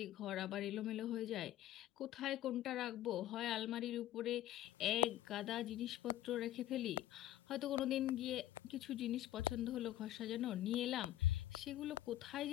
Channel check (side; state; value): right; quieter; 13.6 dB